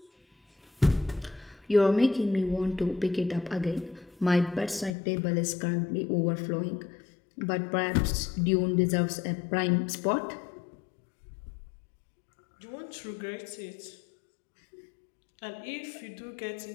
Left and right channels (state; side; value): drops out; right; at 5.0 s